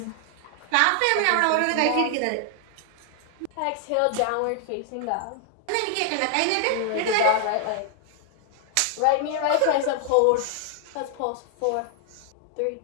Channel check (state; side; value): different; both; correlation 0.00